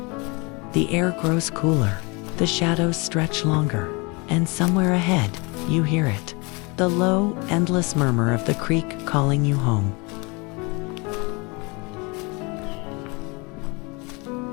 The air grows cooler, the shadows stretch longer, and somewhere ahead, you hear it. The low, endless murmur of the creek calling you home.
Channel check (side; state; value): right; quieter; 28.6 dB